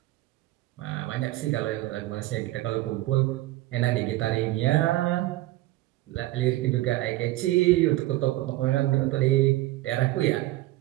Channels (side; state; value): left; quieter; 17.3 dB